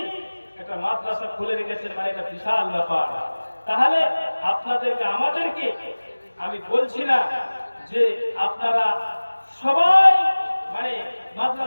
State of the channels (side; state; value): both; inverted; correlation -1.00